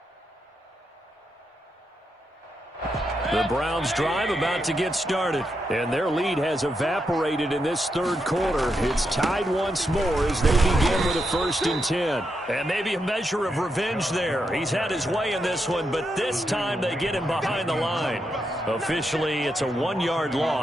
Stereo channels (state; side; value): normal; both; correlation 0.83